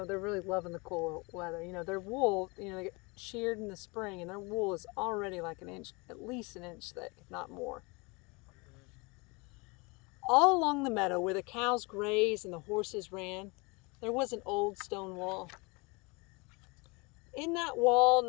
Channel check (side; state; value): right; quieter; 27.9 dB